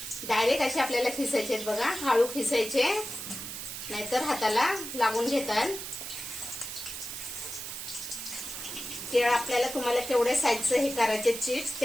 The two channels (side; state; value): right; noise; hiss, 8 dB below the sound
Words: डायरेक्ट असे आपल्याला खिसायचे बघा. हळू खिसायचे नाहीतर हाताला लागून घेतात. केळ आपल्याला तुम्हाला केवढे साईजचे हे करायचे चिप्स